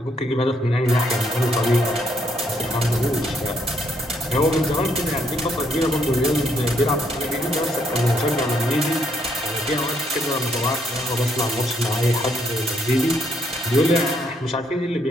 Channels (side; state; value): both; normal; correlation 0.73